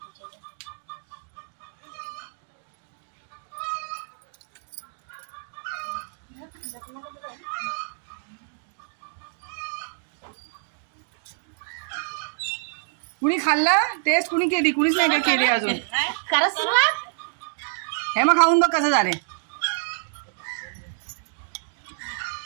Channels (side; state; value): left; silent; digital silence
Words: कुणी खाल्ला टेस्ट कुणी केली. कुणीच नाही का केली अजून. करा सुरुवात. हे मग खाऊन बघ कसं झाले.